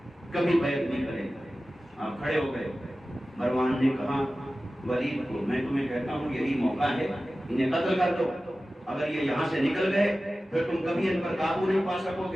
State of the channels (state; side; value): normal; both; correlation 0.95